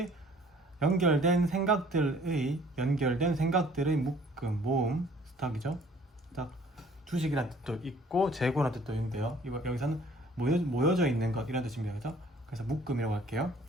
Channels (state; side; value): normal; both; correlation 0.55